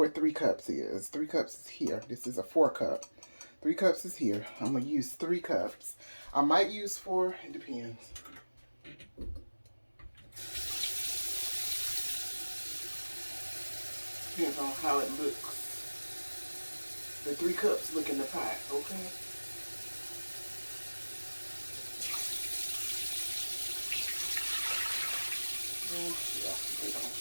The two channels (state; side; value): inverted; both; correlation -1.00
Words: 3 cups is. 3 cups is here. This is a 4 cup. 3 cups is here. I'm going to use 3 cups. I might use 4. It depends. Depends on how it looks. The 3 cups look in the pot, okay? Yeah, they don't